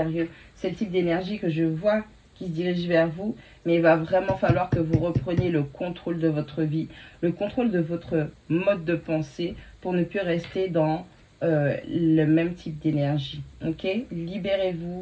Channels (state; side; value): identical; both; correlation 1.00